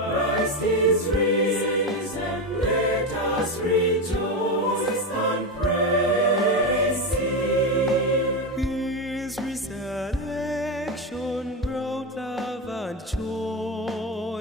is risen, let us rejoice and praise Him. His resurrection brought love and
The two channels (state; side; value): normal; both; correlation 0.14